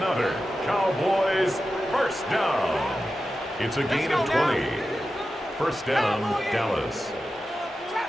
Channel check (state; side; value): normal; both; correlation 0.92